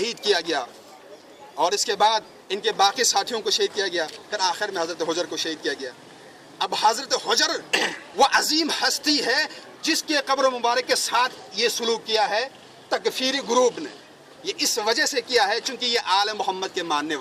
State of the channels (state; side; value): identical; both; correlation 1.00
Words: کیا گیا، اور اس کے بعد ان کے باقی ساتھیوں کو شہید کیا گیا، پھر آخر میں حضرت حجر کو شہید کیا گیا۔ اب حضرت حجر وہ عظیم ہستی ہے جس کے قبر مبارک کے ساتھ یہ سلوک کیا ہے تکفیری گروپ نے، یہ اس وجہ سے کیا ہے چونکہ یہ آل محمد کے ماننے